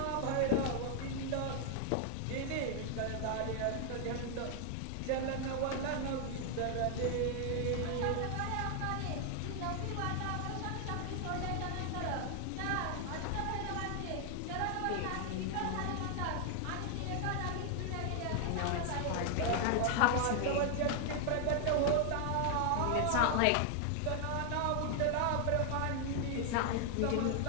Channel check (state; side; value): different; both; correlation 0.00